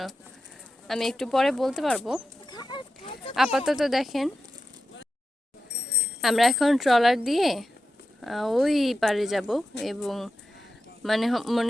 আমি একটু পরে বলতে পারবো। আপাতত দেখেন আমরা এখন ট্রলার দিয়ে ওই পারে যাব, এবং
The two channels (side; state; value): both; normal; correlation 0.91